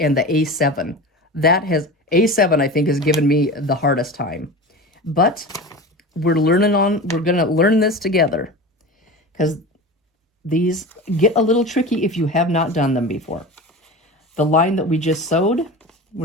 the A7. A7 I think has given me the hardest time. But we're gonna learn this together because these get a little tricky if you have not done them before. The line that we just sewed,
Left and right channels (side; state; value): both; normal; correlation 0.30